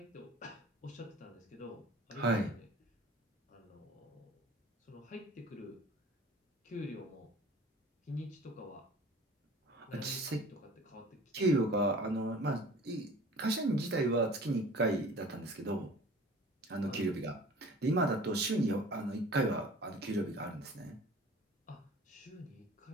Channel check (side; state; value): both; normal; correlation 0.45